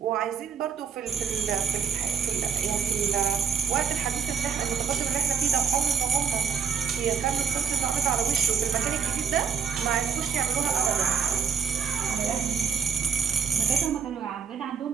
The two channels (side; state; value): left; quieter; 6.7 dB